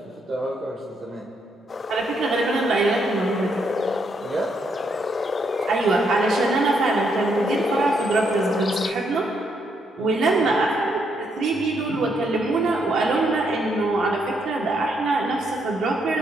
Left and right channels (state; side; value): normal; both; correlation 0.75